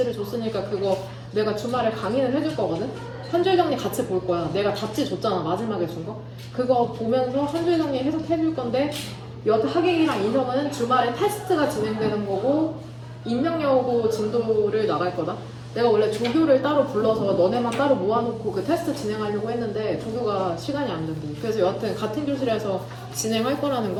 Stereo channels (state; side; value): identical; both; correlation 1.00